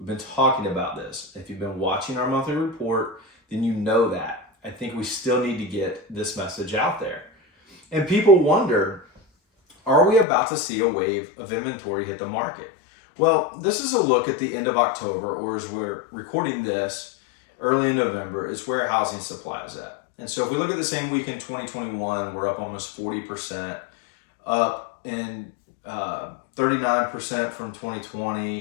been talking about this. If you've been watching our monthly report, then you know that. I think we still need to get this message out there. And people wonder, are we about to see a wave of inventory hit the market? Well, this is a look at the end of October, or as we're recording this, early in November, is where housing supply is at. And so if we look at the same week in 2021, we're up almost 40%, up in 39% from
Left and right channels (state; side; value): drops out; right; at 10.2 s